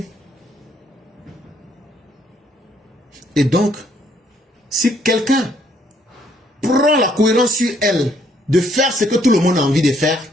Et donc, si quelqu'un prend la cohérence sur elle de faire ce que tout le monde a envie de faire,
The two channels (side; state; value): both; normal; correlation 0.67